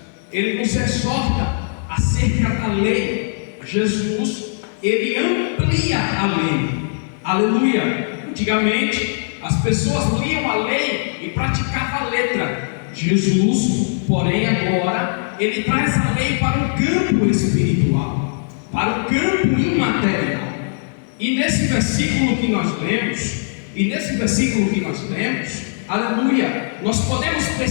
Ele nos exorta acerca da lei. Jesus, Ele amplia a lei. Aleluia! Antigamente, as pessoas liam a lei e praticavam a letra. Jesus, porém, agora, Ele traz a lei para o campo espiritual, para o campo imaterial. E nesse versículo que nós lemos, aleluia, nós podemos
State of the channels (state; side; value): silent; right; digital silence